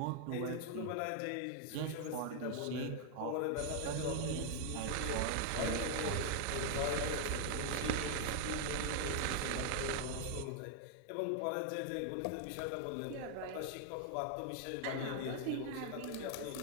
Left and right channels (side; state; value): both; different; correlation 0.00